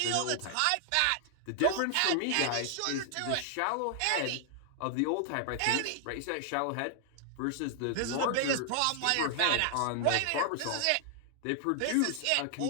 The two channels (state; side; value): different; both; correlation 0.00